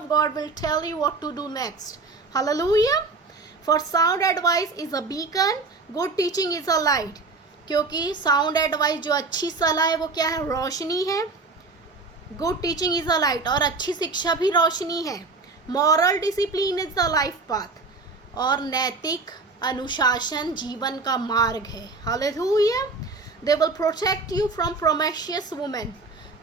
God will tell you what to do next. Hallelujah. For sound advice is a beacon. Good teaching is a light. क्योंकि sound advice जो अच्छी सलाह है वो क्या है? रोशनी है। Good teaching is a light. और अच्छी शिक्षा भी रोशनी है। Moral discipline is the life path, और नैतिक अनुशासन जीवन का मार्ग है। Hallelujah. They will protect you from promiscuous women,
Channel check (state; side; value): quieter; left; 3.8 dB